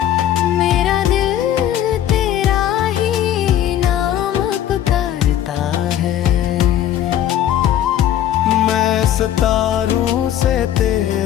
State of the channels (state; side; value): quieter; right; 11.2 dB